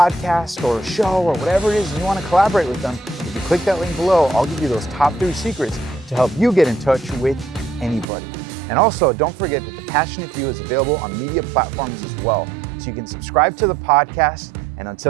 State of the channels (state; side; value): drops out; left; at 8.1 s